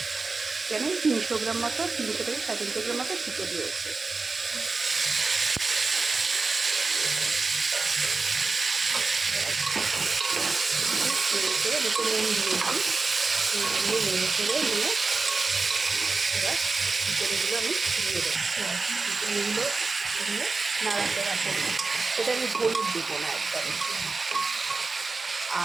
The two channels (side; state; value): left; quieter; 4.0 dB